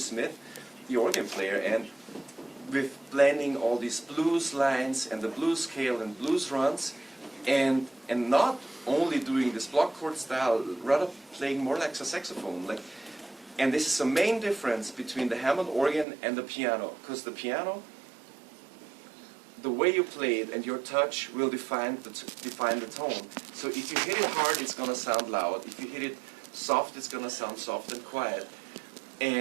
the organ player, and with blending all these blues lines and the blues scale and blues runs, and not only doing this block chord style, rather playing more like a saxophone. And this is the main difference between the Hammond organ and the piano, because the piano, the way you play it and your touch will define the tone. So if you hit it hard, it's going to sound loud. If you hit it soft, it's going to sound soft and quiet.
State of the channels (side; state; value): left; drops out; at 16.1 s